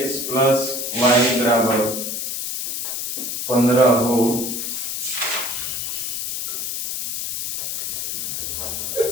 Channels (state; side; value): noise; left; hiss, 3 dB below the sound